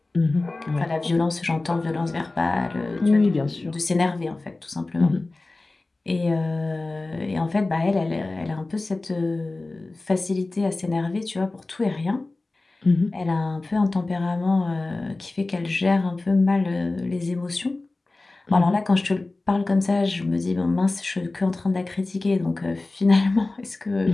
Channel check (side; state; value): right; quieter; 3.1 dB